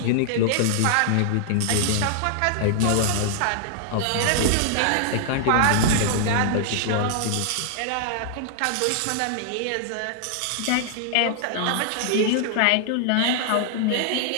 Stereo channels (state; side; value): different; both; correlation -0.01